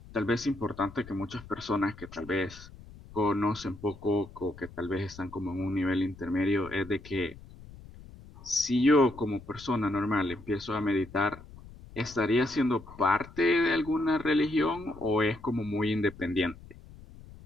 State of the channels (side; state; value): left; noise; rumble, 18 dB below the sound